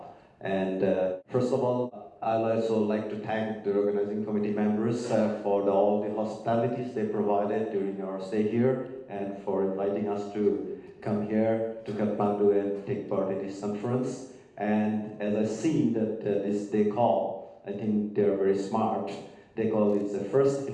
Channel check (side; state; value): both; identical; correlation 1.00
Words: And first of all, I'd also like to thank the organizing committee members for all the hospitalities they provided during our stay here and for inviting us to come here to Kathmandu and take part in this conference. And as I see that they call, I think they're very smart. They call it the first